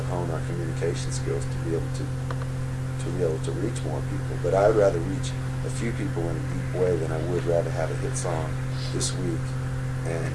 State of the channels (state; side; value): identical; both; correlation 1.00